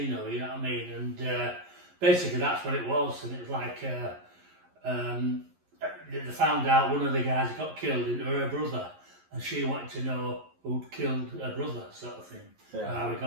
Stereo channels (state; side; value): late; left; 11 ms